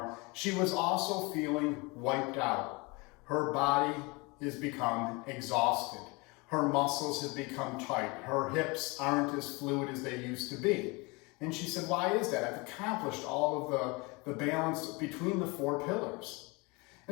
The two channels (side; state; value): right; quieter; 26.9 dB